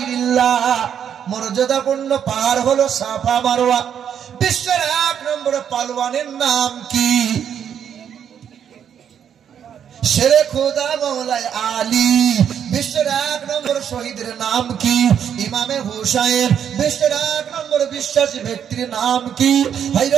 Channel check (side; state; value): left; quieter; 8.6 dB